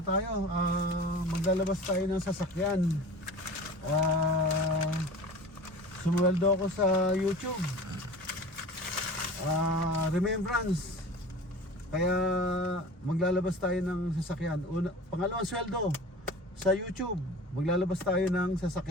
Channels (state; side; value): normal; both; correlation 0.38